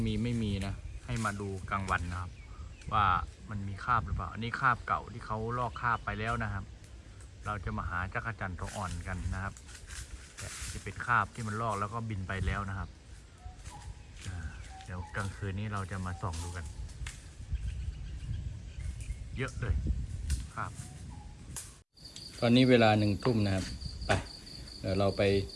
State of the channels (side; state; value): both; identical; correlation 1.00